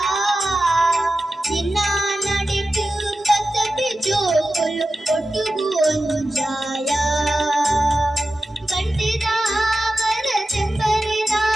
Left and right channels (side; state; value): both; normal; correlation 0.94